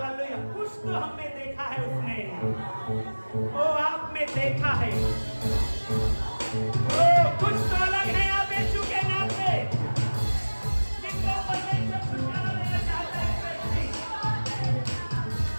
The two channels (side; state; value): both; inverted; correlation -1.00